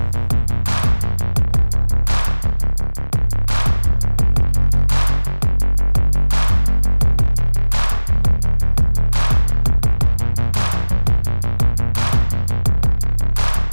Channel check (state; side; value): inverted; both; correlation -1.00